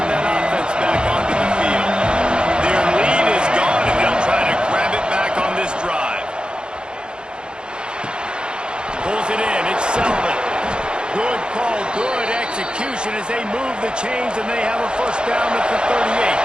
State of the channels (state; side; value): late; left; 0.049 ms